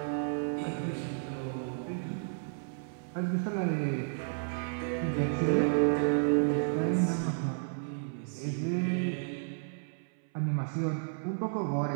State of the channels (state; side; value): silent; left; 56 dB below the other